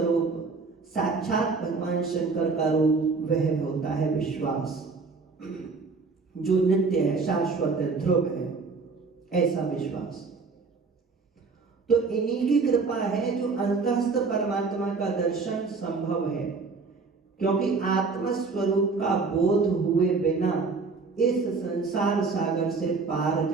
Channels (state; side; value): quieter; left; 4.4 dB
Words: साक्षात भगवान शंकर का रूप वह होता है विश्वास, जो नित्य है, शाश्वत है, ध्रुव है, ऐसा विश्वास। तो इन्हीं की कृपा है जो अंतस्थ परमात्मा का दर्शन संभव है, क्योंकि आत्म स्वरूप का बोध हुए बिना इस संसार सागर से पार